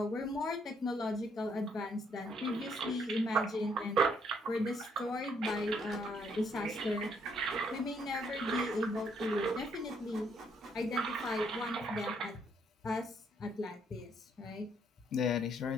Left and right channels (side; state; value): both; normal; correlation 0.70